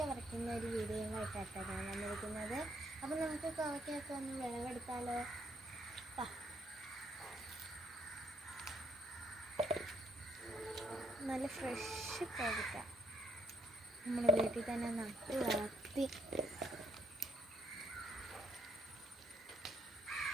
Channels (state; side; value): normal; both; correlation 0.71